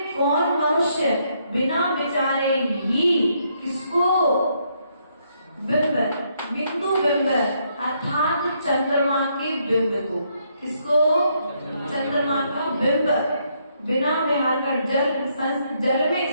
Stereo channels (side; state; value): both; inverted; correlation -0.74